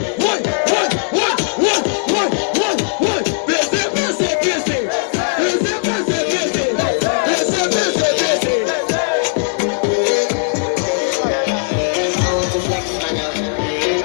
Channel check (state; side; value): silent; right; 68 dB below the other